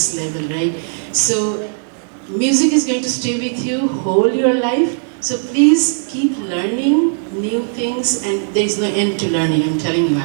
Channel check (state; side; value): silent; left; 68 dB below the other